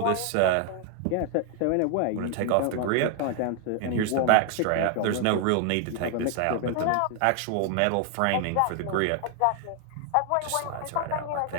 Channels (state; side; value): different; both; correlation 0.00